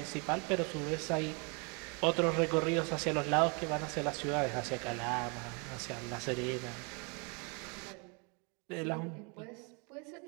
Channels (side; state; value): left; quieter; 33.2 dB